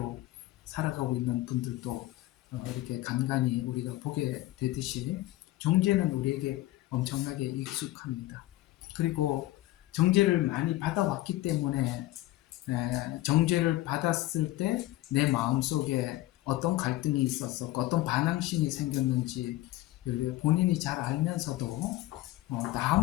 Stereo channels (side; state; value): right; quieter; 16.9 dB